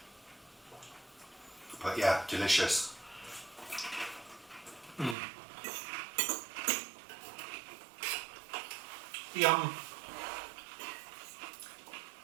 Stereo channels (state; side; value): drops out; left; at 5.2 s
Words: But yeah, delicious. Yum.